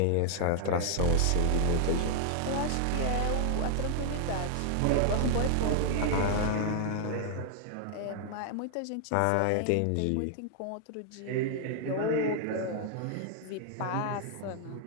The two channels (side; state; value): both; different; correlation -0.01